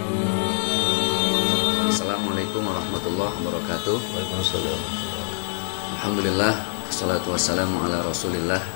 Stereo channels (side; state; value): right; silent; 62 dB below the other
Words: Assalamualaikum warahmatullahi wabarakatuh. Waalaikumsalam. Alhamdulillah, wassalatu wassalamu ala rasulillah.